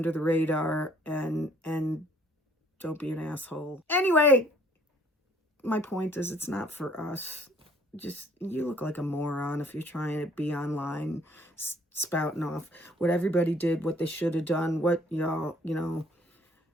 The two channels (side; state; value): both; normal; correlation 0.59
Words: the radar and don't be an asshole. Anyway, my point is, it's not for us. Just, you look like a moron if you're trying to be online spouting off what everybody did, what they should have done, what y'all, you know,